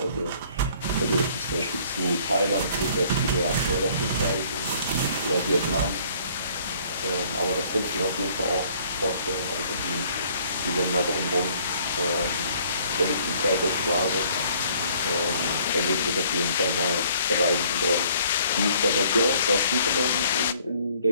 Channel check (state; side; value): inverted; both; correlation -0.59